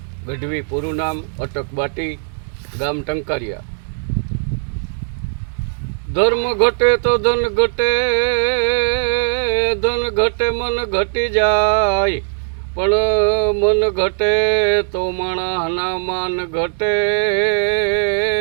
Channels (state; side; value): silent; left; 64 dB below the other